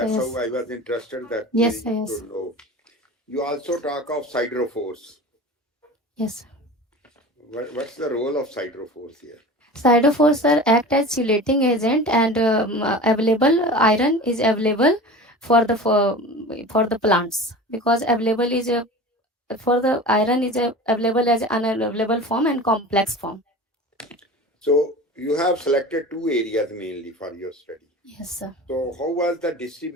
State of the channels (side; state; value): both; normal; correlation 0.35